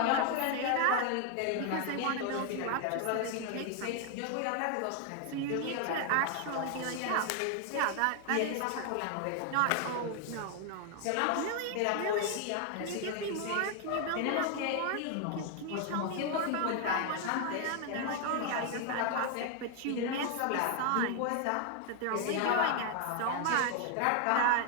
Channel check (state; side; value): different; both; correlation 0.00